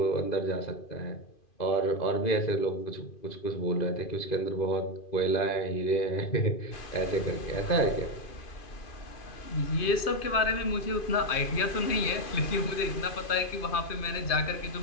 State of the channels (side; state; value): right; late; 2.5 ms